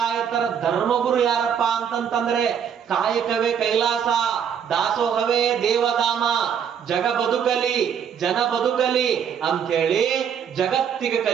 ಧರ್ಮಗುರು ಯಾರಪ್ಪ ಅಂತಂತಂದ್ರೆ ಕಾಯಕವೇ ಕೈಲಾಸ, ದಾಸೋಹವೇ ದೇವಧಾಮ, ಜಗ ಬದುಕಲಿ ಜನ ಬದುಕಲಿ ಅಂಥೇಳಿ ಜಗತ್ತಿಗೆ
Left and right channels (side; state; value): left; quieter; 8.0 dB